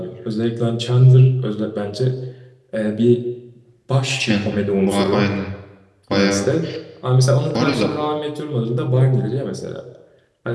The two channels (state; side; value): identical; both; correlation 1.00